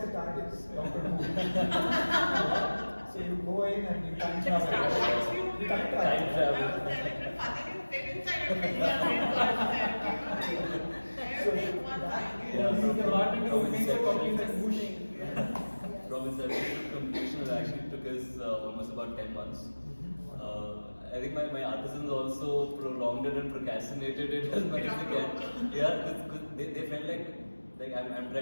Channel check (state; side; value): inverted; both; correlation -1.00